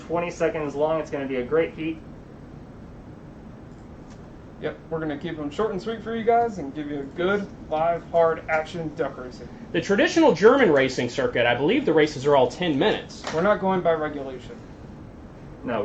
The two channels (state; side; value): identical; both; correlation 1.00